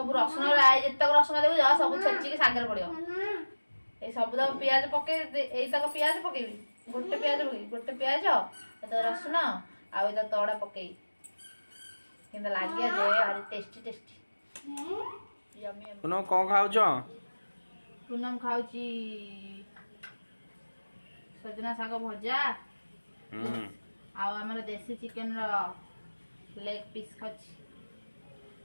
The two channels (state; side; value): inverted; both; correlation -1.00